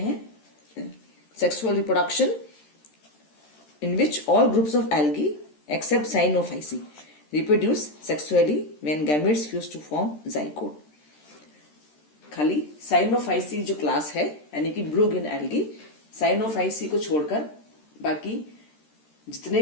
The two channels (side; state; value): right; late; 13 ms